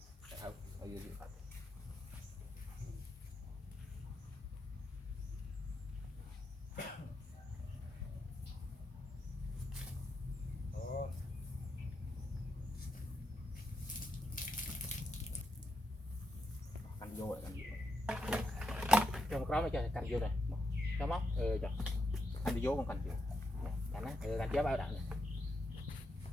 không bao nhiêu canh vô rồi cho một đó mới cho canh vô này cho móc cho anh đi vô con canh vô canh á canh chế bao đạn này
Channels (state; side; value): normal; both; correlation 0.82